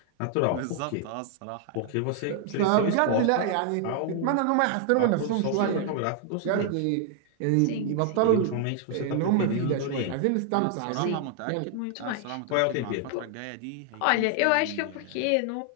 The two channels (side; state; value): both; different; correlation 0.00